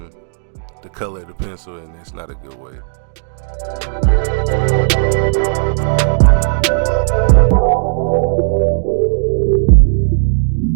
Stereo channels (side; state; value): left; silent; digital silence